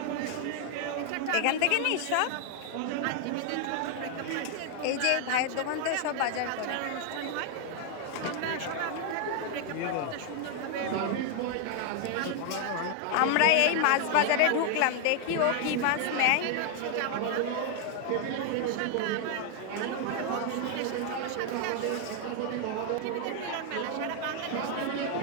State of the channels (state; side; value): different; both; correlation 0.00